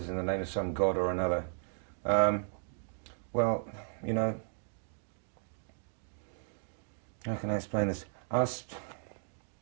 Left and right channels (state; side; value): silent; left; 54 dB below the other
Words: in the name of some god or another. Well, you know, how can I explain this?